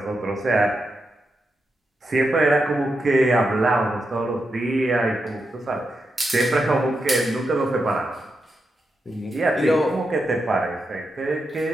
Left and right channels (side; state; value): both; normal; correlation 0.86